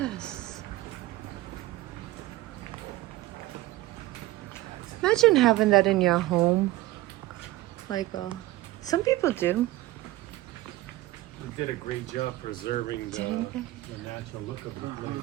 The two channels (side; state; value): left; quieter; 17.4 dB